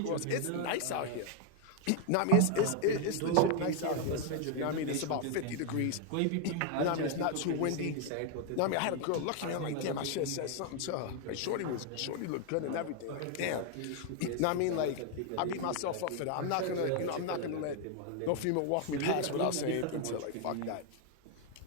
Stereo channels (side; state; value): both; different; correlation 0.00